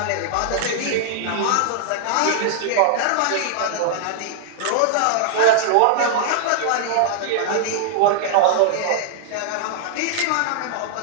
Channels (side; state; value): both; different; correlation -0.01